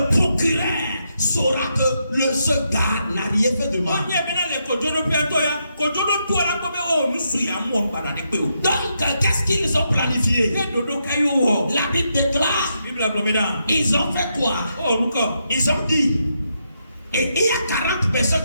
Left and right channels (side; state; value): both; inverted; correlation -0.81